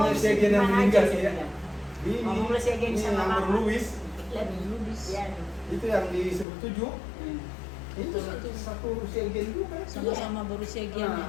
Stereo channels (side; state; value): right; drops out; at 6.5 s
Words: Segian yang meninggal ya. Ini Ngomonglah Segian ini sama nomor Mama. Louis. Lebih lubis ya. Itu yang di 17. Itu satu Segian juga. Sama-sama berusia Nah, giannya.